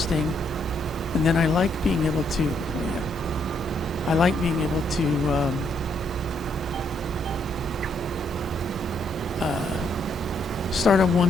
and then I like being able to, start on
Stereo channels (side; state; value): both; normal; correlation 0.73